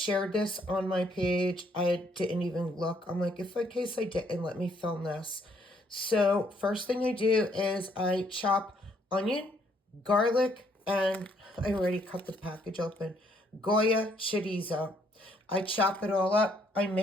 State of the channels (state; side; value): normal; both; correlation 0.68